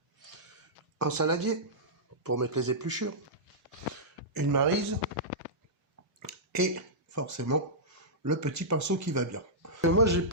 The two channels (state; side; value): normal; both; correlation -0.13